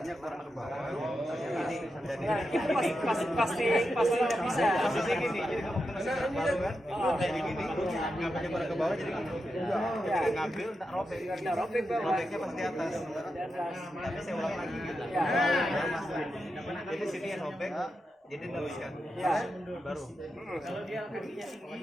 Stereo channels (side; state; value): both; normal; correlation 0.88